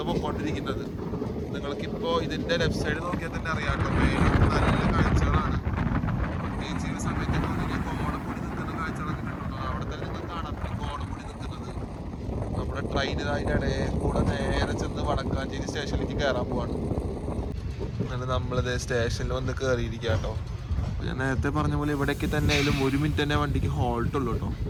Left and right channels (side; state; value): both; identical; correlation 1.00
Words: പോയിക്കൊണ്ടിരിക്കുന്നത്. നിങ്ങൾക്കിപ്പോൾ ഇതിൻ്റെ ലെഫ്റ്റ് സൈഡ് നോക്കിയാൽ തന്നെ അറിയാം കേട്ടോ. നല്ല കാഴ്ചകളാണ്. പ്രത്യേകിച്ച് ഈ സമയത്ത് കോടമുടി നിൽക്കുന്ന കാഴ്ചകളൊക്കെ കിട്ടും. അവിടെ തന്നെ നിങ്ങൾ കാണാം കോടമുടി നിൽക്കുന്നത്. നമ്മുടെ ട്രെയിൻ അതിൻ്റെ ഇടയിൽ കൂടെ നേരെ ചെന്ന് വടക്കാഞ്ചേരി സ്റ്റേഷനിലേക്ക് കയറാൻ പോവാണ്. അങ്ങനെ നമ്മളിത് സ്റ്റേഷനിൽ വന്ന് കയറിയിരിക്കുക കേട്ടോ. ഞാൻ നേരത്തെ പറഞ്ഞ പോലെ ഇവിടേക്ക് തന്നെ ആയാലും 1 മിനിറ്റ് തന്നെ വണ്ടിക്ക് ഹോൾട്ടുള്ളൂ കേട്ടോ.